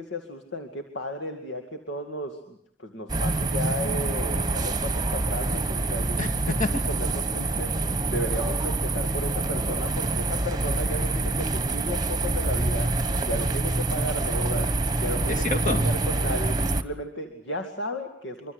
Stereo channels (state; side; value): normal; both; correlation 0.55